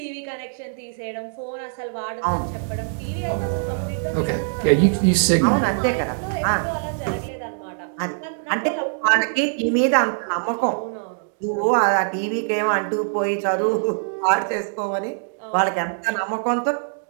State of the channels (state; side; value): silent; left; digital silence